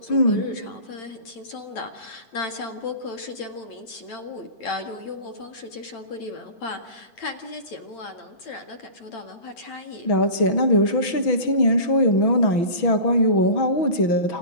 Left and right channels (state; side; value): late; right; 6.1 ms